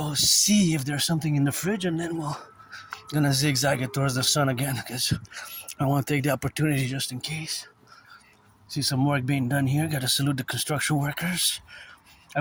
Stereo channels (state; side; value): identical; both; correlation 1.00